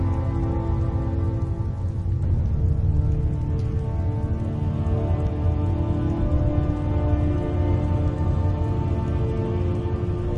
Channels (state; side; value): identical; both; correlation 1.00